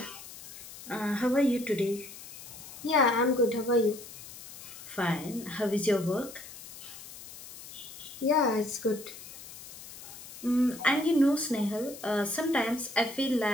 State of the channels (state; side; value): noise; left; hiss, 15 dB below the sound